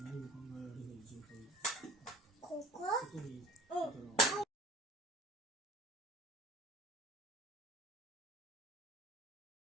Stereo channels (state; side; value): normal; both; correlation 0.41